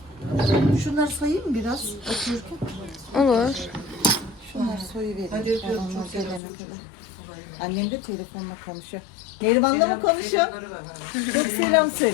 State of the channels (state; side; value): drops out; right; at 6.4 s